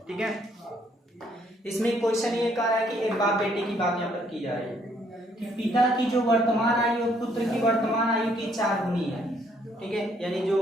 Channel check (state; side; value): normal; both; correlation 0.67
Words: ठीक है। इसमें क्वेश्चन ये कह रहा है कि एक बाप बेटे की बात यहाँ पर की जा रही है कि पिता की जो वर्तमान आयु और पुत्र की वर्तमान आयु की 4 गुनी है, ठीक है। यानी जो